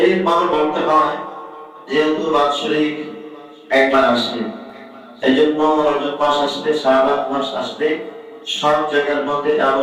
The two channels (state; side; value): identical; both; correlation 1.00